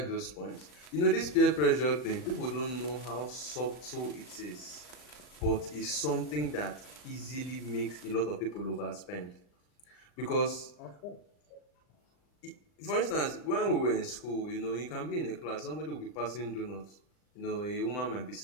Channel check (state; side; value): late; right; 40 ms